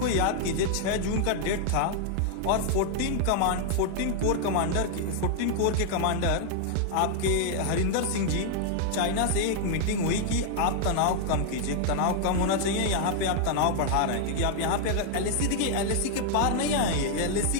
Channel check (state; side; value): different; both; correlation 0.00